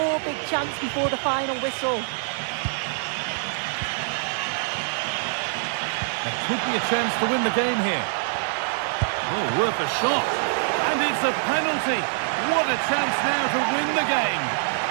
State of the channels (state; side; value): silent; left; 62 dB below the other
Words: big chance before the final whistle. There could be a chance to win the game here. Oh, worth a shot. And it's a penalty. What a chance now to win the game.